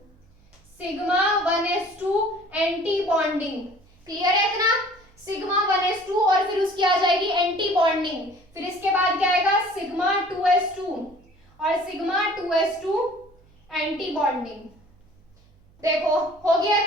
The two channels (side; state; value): right; noise; hum, 30 dB below the sound